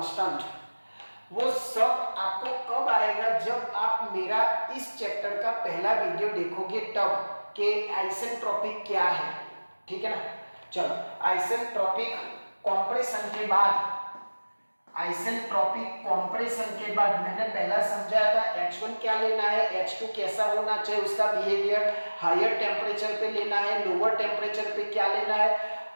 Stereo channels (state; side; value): inverted; both; correlation -1.00